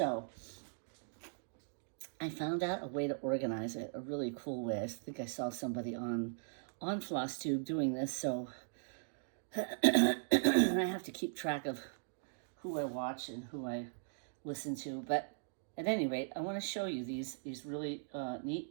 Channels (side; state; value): left; silent; digital silence